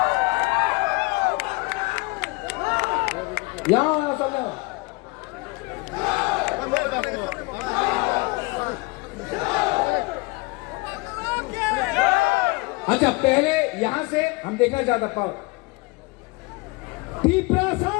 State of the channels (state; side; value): quieter; right; 25.3 dB